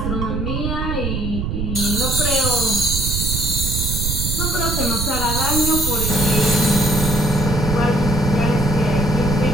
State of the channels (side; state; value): right; noise; rumble, 2 dB below the sound